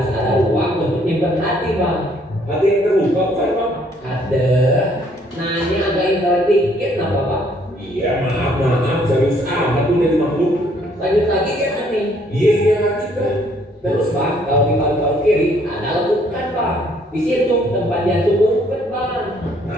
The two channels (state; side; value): normal; both; correlation 0.64